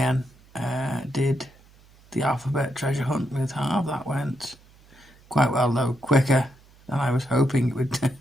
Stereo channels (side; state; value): right; noise; hum, 27 dB below the sound